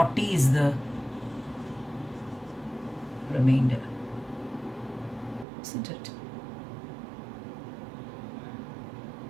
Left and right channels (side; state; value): left; drops out; at 5.5 s